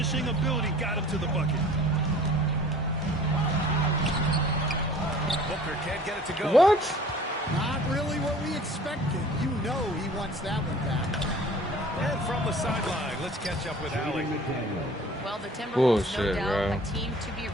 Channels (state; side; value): normal; both; correlation 0.48